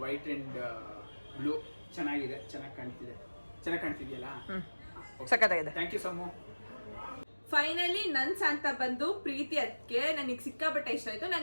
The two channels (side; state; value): both; inverted; correlation -1.00